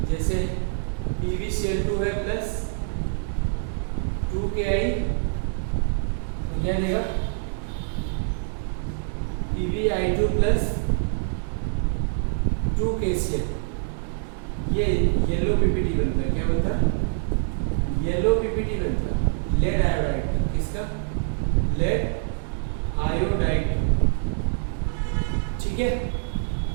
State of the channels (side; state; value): left; silent; digital silence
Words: जैसे PbCl2 है प्लस 2Ki, तो क्या देगा? PbI2 plus 2KCl। ये येलो पीपीटी बनता है। क्या बनता है? येलो पीपीटी बनता है। लेड आयोडाइड का। किसका? Lead iodide. ठीक है,